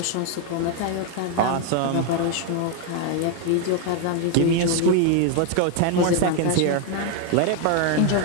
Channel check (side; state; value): both; different; correlation 0.00